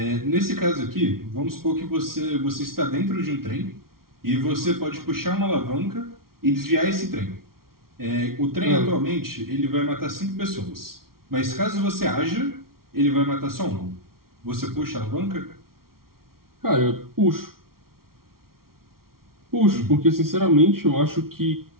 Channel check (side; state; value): left; late; 0.93 ms